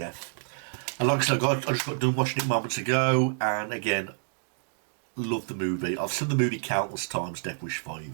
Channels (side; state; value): left; silent; digital silence